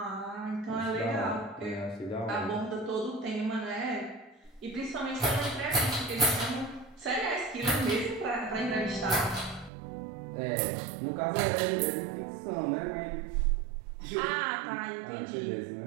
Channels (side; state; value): left; drops out; at 9.7 s